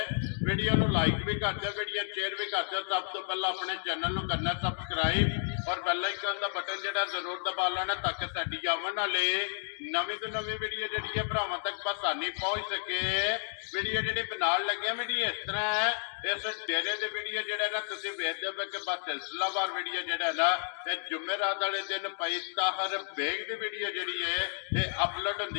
ਵੀਡੀਓ ਨੂੰ ਲਾਈਕ ਵੀ ਕਰ ਦਿਓ, ਵੀਡੀਓ ਸ਼ੇਅਰ ਵੀ ਕਰ ਦਿਓ। ਸਭ ਤੋਂ ਪਹਿਲਾਂ ਆਪਣੇ ਚੈਨਲ ਨੂੰ ਕਰਨਾ ਸਬਸਕ੍ਰਾਈਬ ਔਰ ਬੈਲ ਆਈਕਨ ਦਾ ਬਟਨ ਜਿਹੜਾ ਜ਼ਰੂਰ ਦਬਾ ਲੈਣਾ ਤਾਂ ਕਿ ਸਾਡੀ ਆਉਣ ਵਾਲੀ ਨਵੀਂ ਤੋਂ ਨਵੀਂ ਵੀਡੀਓ ਜਿਹੜੀ ਹੈ ਭਰਾਵਾਂ ਤੱਕ ਆਸਾਨੀ ਪਹੁੰਚ ਸਕੇ। ਵੀਡੀਓ ਜਿਹੜੀ ਬਣਾਉਣ ਲੱਗਿਆ ਵੀਡੀਓ ਇਸ ਤਰ੍ਹਾਂ ਹੈ, ਇਸ ਡੇਰੇ ਦੇ ਵੀਡੀਓ ਜਿਹੜਾ ਨਾ ਤੁਸੀਂ ਵੇਖਦੇ ਹੋ ਕਿ ਬਸ ਸਿਲਸਿਲਾਵਾਰ ਵੀਡੀਓ ਜਿਹੜਾ ਨਾ ਇਹ ਜੁਮੇਰਾਤ ਵਾਲੇ ਦਿਨ ਭਾਈ ਤਾਹਰ ਬੇਗ ਦੀ ਵੀਡੀਓ ਜਿਹੜੀ ਹੈ ਇਹ ਅਪਲੋਡ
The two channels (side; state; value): right; silent; digital silence